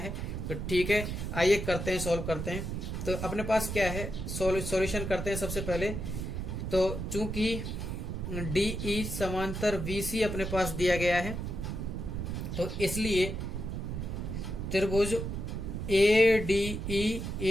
तो ठीक है, आइए करते हैं, सॉल्व करते हैं। तो अपने पास क्या है, सॉल्यूशन करते हैं सबसे पहले। तो चूंकि DE समांतर BC अपने पास दिया गया है, तो इसलिए त्रिभुज ADE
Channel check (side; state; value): right; noise; rumble, 4 dB below the sound